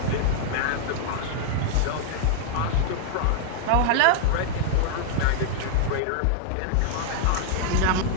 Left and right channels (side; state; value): both; different; correlation -0.01